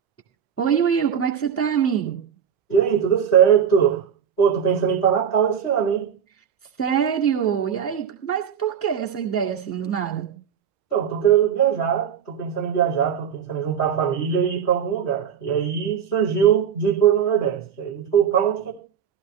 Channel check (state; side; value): quieter; left; 8.1 dB